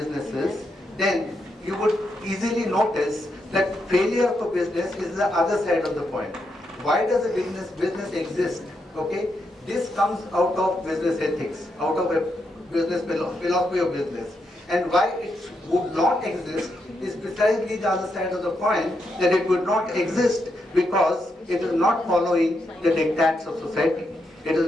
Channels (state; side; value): normal; both; correlation 0.82